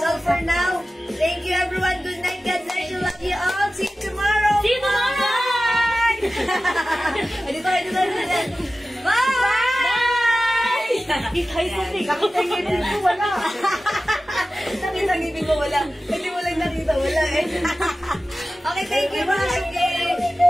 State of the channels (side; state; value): both; normal; correlation 0.95